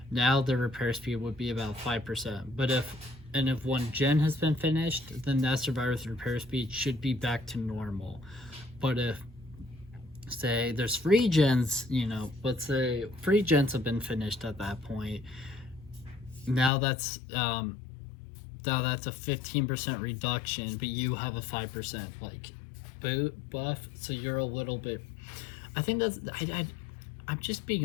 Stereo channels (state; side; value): drops out; right; at 16.7 s